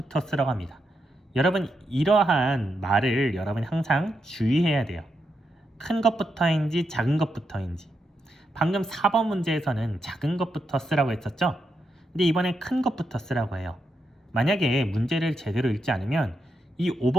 쓰라고 합니다. 여러분, 이러한 말을 여러분이 항상 주의해야 돼요. 큰 것부터인지 작은 것부터인지. 방금 4번 문제에서는 작은 것부터 쓰라고 했었죠? 근데 이번엔 큰 것부터 쓰라고 해요. 만약에 문제를 제대로 읽지 않으면 이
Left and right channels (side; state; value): both; normal; correlation 0.83